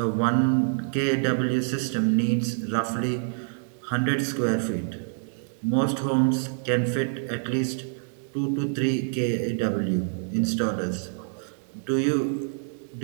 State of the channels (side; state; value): left; silent; digital silence